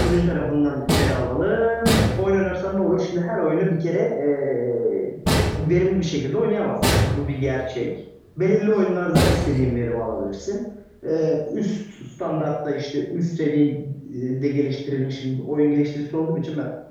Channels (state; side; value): identical; both; correlation 1.00